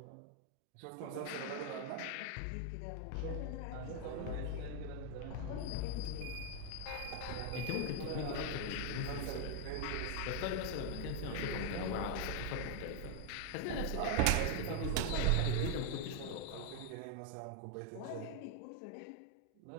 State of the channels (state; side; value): different; both; correlation 0.00